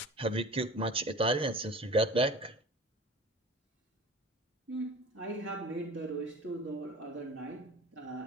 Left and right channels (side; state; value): both; normal; correlation 0.40